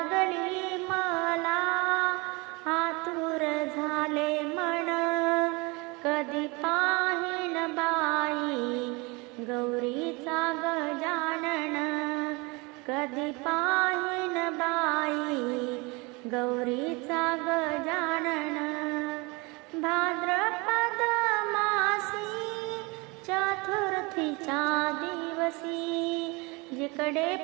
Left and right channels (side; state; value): left; quieter; 26.9 dB